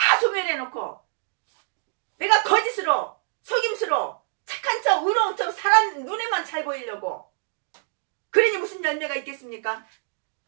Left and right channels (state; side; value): silent; left; digital silence